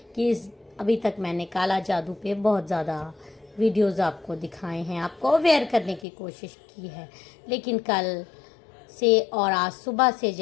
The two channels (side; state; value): right; drops out; at 6.1 s